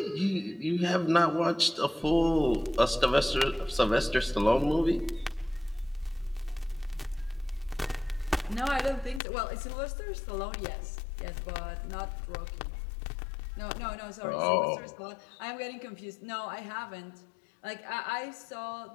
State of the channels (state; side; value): drops out; right; at 9.2 s